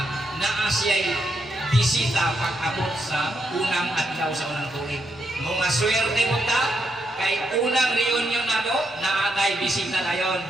naa siya'y bisita pag-abot sa unang adlaw sa unang tuig. Mga swerte mo ta, kay unang reunion na to, naatay bisita na yun.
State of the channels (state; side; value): normal; both; correlation 0.80